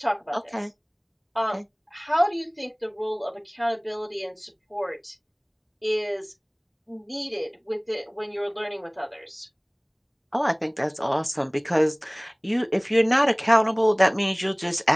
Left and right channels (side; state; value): both; identical; correlation 1.00